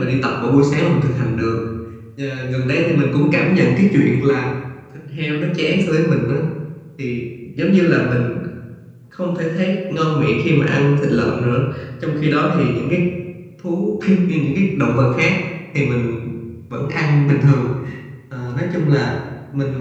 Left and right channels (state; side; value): identical; both; correlation 1.00